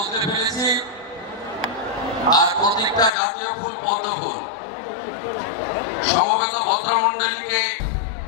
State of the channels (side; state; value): right; drops out; at 3.1 s